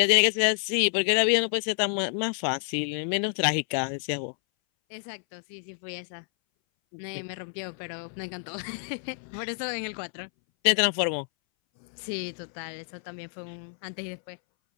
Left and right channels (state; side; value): silent; right; 59 dB below the other